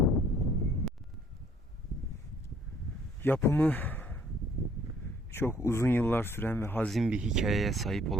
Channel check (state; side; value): normal; both; correlation 0.60